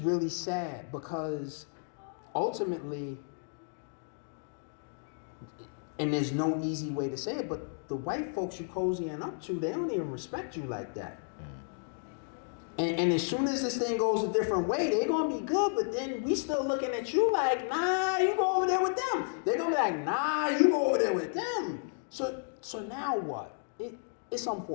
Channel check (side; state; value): right; silent; digital silence